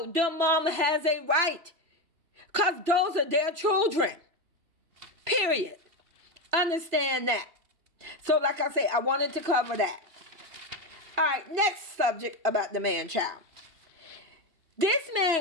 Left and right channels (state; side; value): late; left; 2.7 ms